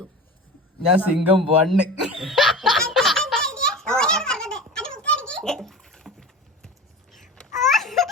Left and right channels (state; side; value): normal; both; correlation 0.32